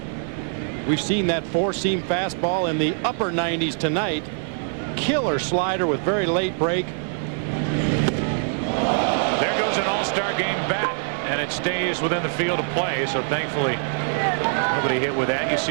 We've seen that 4-seam fastball in the upper 90s tonight. Killer slider with very late break. There goes an all-star game bat, and it stays within the field of play, so thankfully nobody hit with that. You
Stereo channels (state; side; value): silent; left; 63 dB below the other